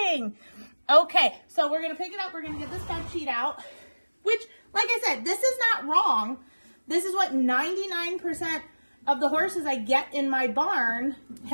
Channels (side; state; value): both; inverted; correlation -1.00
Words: Okay, so we're going to pick it up. We're going to get this bed sheet out, which, like I said, this is not wrong. This is what 99% of the horses I get in my barn